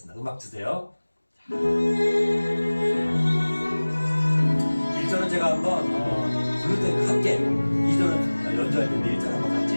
음악 주세요. 1절은 제가 한번 부를 때 함께 2절은 연주할 텐데 1절 한번 같이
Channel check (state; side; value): inverted; both; correlation -1.00